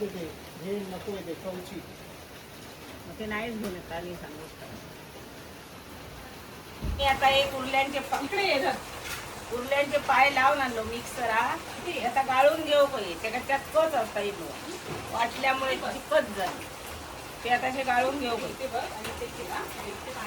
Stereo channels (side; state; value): both; identical; correlation 1.00